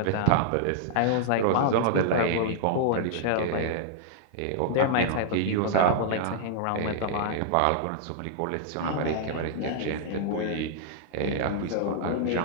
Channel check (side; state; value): both; different; correlation -0.01